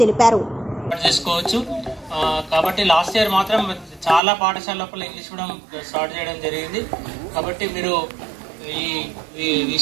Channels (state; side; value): drops out; left; at 4.2 s